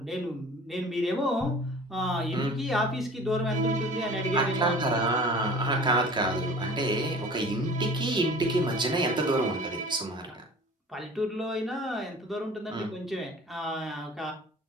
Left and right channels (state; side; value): normal; both; correlation 0.44